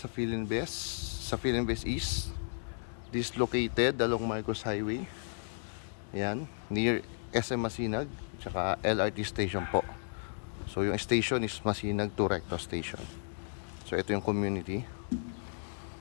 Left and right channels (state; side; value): silent; right; digital silence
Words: Philinbest East, this located along Marcos Highway. Ayan, near SM Masinag tsaka LRT station po. So yung station is Masinag to Recto station. So ito yung community.